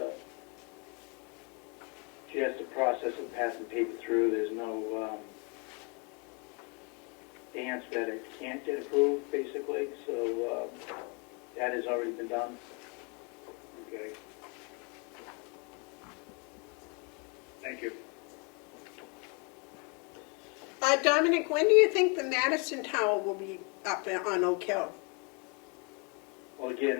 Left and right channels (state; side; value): quieter; right; 33.8 dB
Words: just a process of passing paper through. There's no dance that it can't get approved, basically. So that has already been done. Okay. Thank you. Dominic, when do you think the Madison Tower will be up on Oak Hill? Well, again,